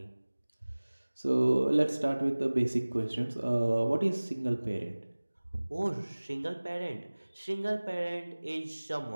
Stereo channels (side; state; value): both; inverted; correlation -1.00